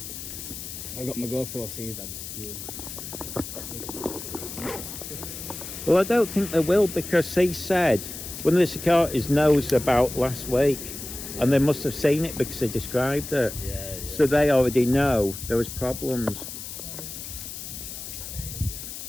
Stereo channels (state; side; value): noise; left; hiss, 9 dB below the sound